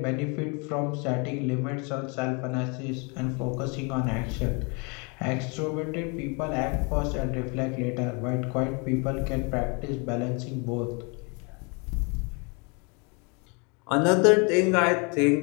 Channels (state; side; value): quieter; right; 32.7 dB